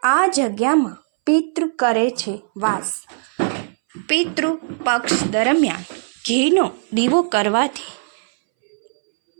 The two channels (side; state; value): left; silent; 64 dB below the other